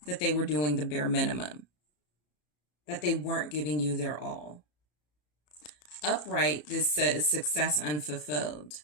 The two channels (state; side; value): late; right; 34 ms